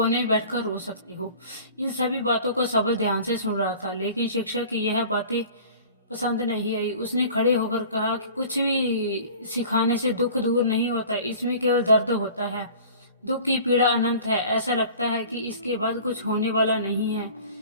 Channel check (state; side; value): inverted; both; correlation -0.44